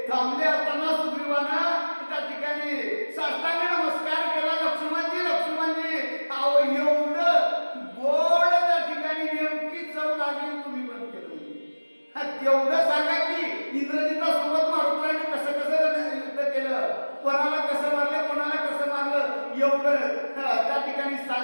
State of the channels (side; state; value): both; inverted; correlation -1.00